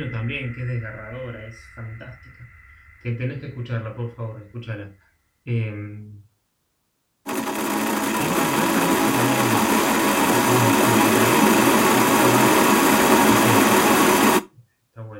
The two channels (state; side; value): identical; both; correlation 1.00